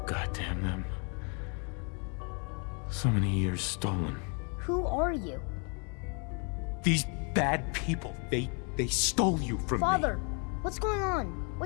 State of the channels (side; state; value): right; quieter; 36.8 dB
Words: goddamn them. So many years stolen. Who are you? These bad people, they stole you from me. Father, what's going on?